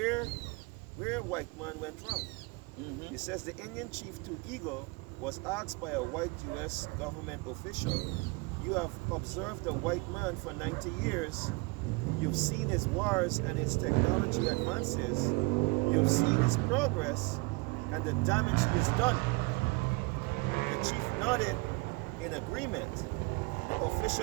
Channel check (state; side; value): quieter; left; 27.0 dB